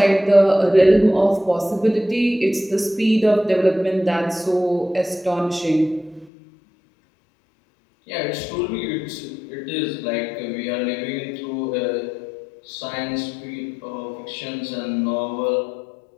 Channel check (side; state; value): right; drops out; at 6.3 s